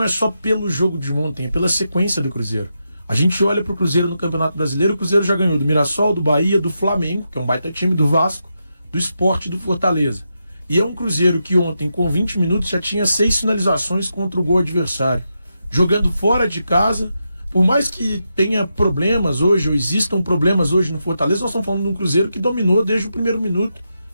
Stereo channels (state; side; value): inverted; both; correlation -0.86